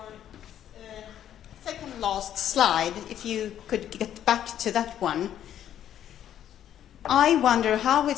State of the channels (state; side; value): quieter; right; 10.7 dB